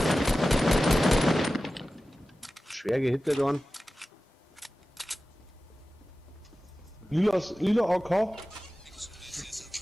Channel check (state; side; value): normal; both; correlation 0.95